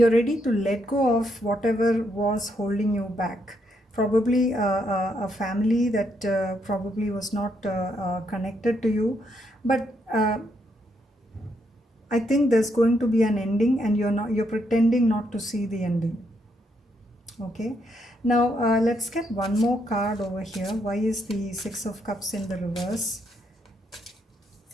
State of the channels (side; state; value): both; normal; correlation 0.76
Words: ready to let go of whatever was holding you back. Probably a family that probably was not connected to you, but I think there's going to be an ending, and you're pretending not to see the ending, okay? Now let's get one more card over here. Why is the Six of Cups in the reverse?